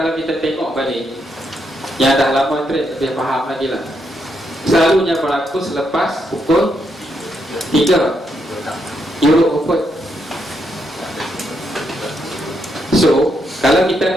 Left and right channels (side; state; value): both; normal; correlation 0.79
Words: kita tengok balik, yang dah lama trade lebih faham lagi lah, selalunya berlaku selepas pukul 3 Euro Open. So kalau